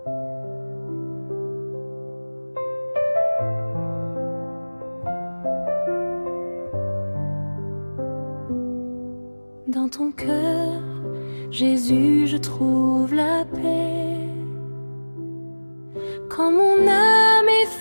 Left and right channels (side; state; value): both; inverted; correlation -1.00